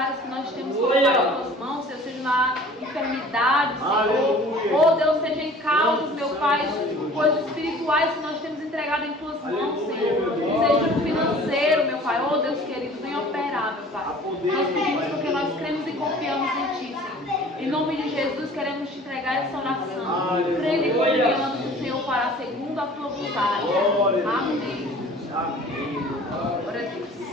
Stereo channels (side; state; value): both; normal; correlation 0.47